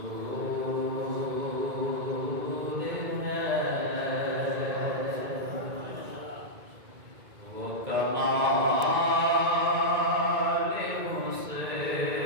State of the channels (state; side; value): late; left; 2.2 ms